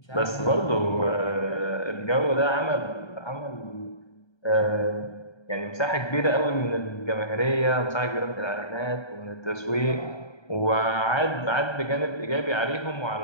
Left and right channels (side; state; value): right; late; 1.3 ms